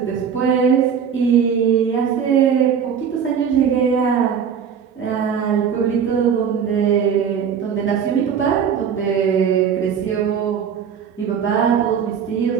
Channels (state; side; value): quieter; left; 7.5 dB